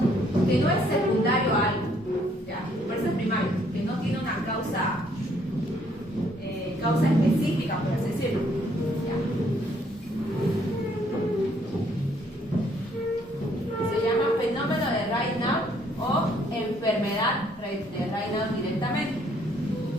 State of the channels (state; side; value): normal; both; correlation 0.66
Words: que no es secundario a algo, ¿ya? Por eso es primario, que no tiene una causa específica, por así decirlo, ¿ya? Se llama fenómeno de Raynaud o enfermedad de Raynaud directamente,